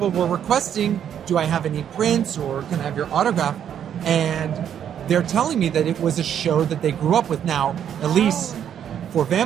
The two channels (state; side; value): quieter; left; 9.2 dB